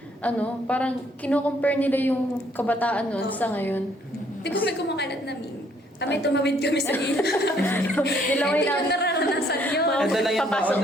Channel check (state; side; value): normal; both; correlation 0.65